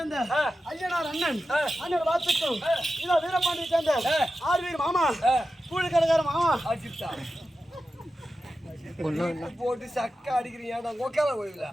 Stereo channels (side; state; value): both; normal; correlation 0.92